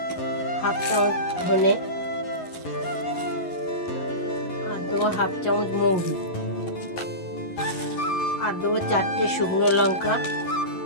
1/2 চামচ ধনে, আর দেবো 1/2 চামচ মৌরি, আর দেবো 4টে শুকনো লঙ্কা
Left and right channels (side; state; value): right; late; 11 ms